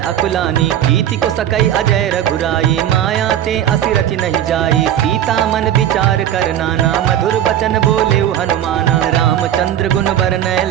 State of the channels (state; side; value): quieter; left; 10.9 dB